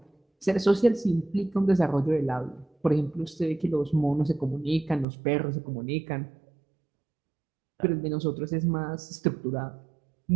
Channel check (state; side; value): drops out; left; at 5.1 s